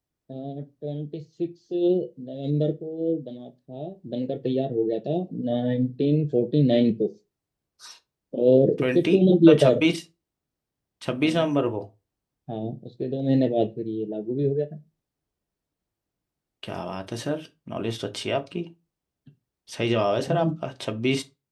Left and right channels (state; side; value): identical; both; correlation 1.00